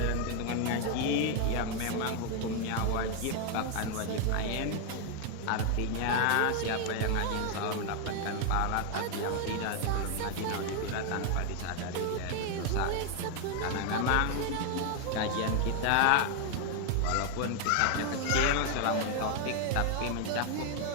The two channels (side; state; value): both; different; correlation 0.01